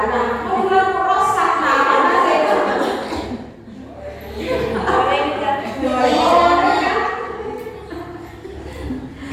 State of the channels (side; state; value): both; identical; correlation 1.00